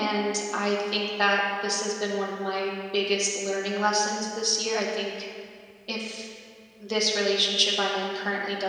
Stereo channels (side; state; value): both; identical; correlation 1.00